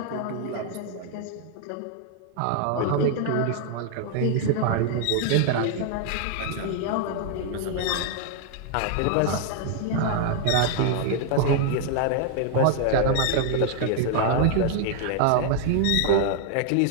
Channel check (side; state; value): both; different; correlation 0.00